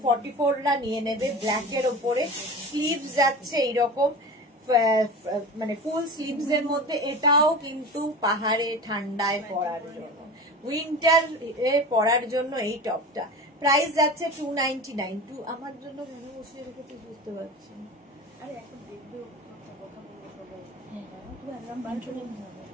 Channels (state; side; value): normal; both; correlation 0.32